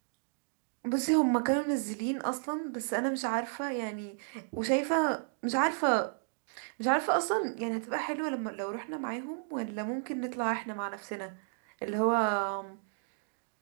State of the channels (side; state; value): left; silent; digital silence